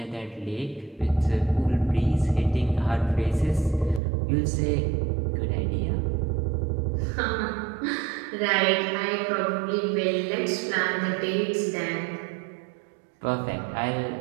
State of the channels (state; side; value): drops out; left; at 4.0 s